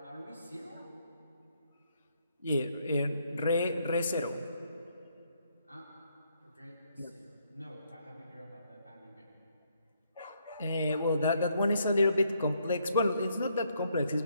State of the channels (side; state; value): both; inverted; correlation -0.73